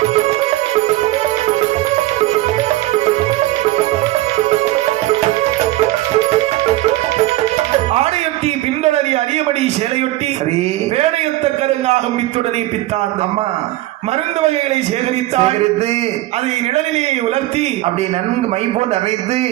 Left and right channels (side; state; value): left; quieter; 16.9 dB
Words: ஆடையொட்டி பின்தொடரி அரியபடி சேலையொட்டி வேலையுத்த கருங்காக பித்துடனே பித்தான். அம்மா மருந்து வகைகளை சேகரித்தால் அதை நிழலிலே உலர்த்தி அப்படி நன்கு மை போல் அரைத்து